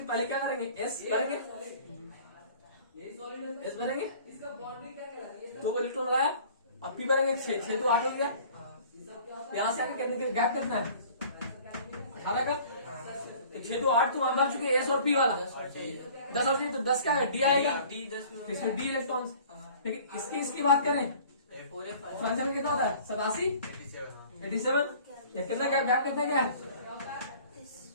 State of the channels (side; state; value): both; inverted; correlation -0.49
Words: पहले क्या करेंगे, एस भरेंगे, एस भरेंगे, तो वो इलेक्ट्रॉन लगाया, और पी भरेंगे 6 तो 8 हो गया। यहां से आगे करने के गैप कितना है, 18 का। तो 6 तो 8 तो वहां भर चुके एस और पी वाला, 10 और 3 तो 10 का है, डी आएगा, इसमें डी इलेक्ट्रॉन। लेकिन इसकी बात करें, फ्रांसियम में कितना होता है, 87 87। कितना गैप कितना क्या है,